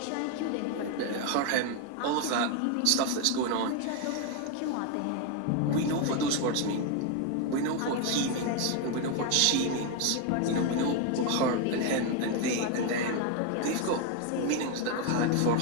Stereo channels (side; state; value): both; different; correlation 0.02